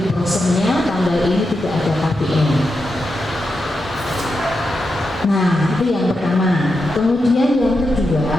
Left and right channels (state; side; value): normal; both; correlation 0.87